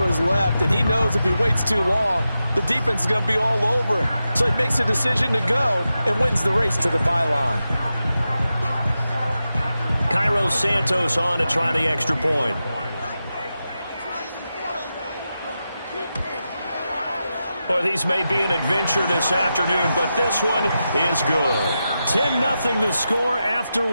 his left, and he knows if he waits too long, the defense is going to be all over him. So he makes a decision to go and wins the race to the pylon. Cairo Santos on to try the extra point. Well, these may be an adventure this afternoon, but this one is good. 10-0 the score after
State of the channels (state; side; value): inverted; both; correlation -0.90